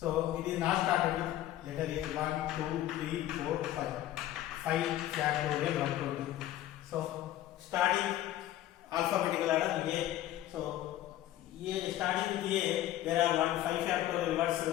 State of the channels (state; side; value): quieter; right; 13.6 dB